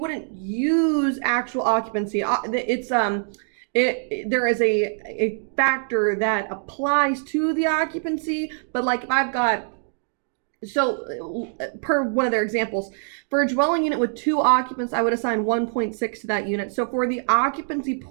use actual occupancy. There is a factor that applies to the occupancy, but like if I've got, so per one of their examples, for a dwelling unit with 2 occupants, I would assign 1.6 to that unit. So for the occupancy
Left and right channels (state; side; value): silent; left; digital silence